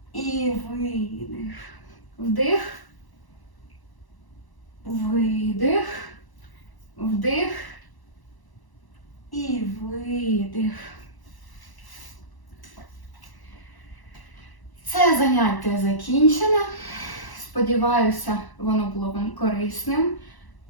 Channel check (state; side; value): late; right; 1.0 ms